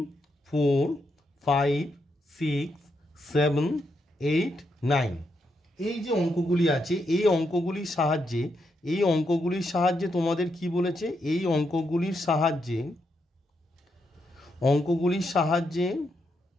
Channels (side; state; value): both; normal; correlation 0.81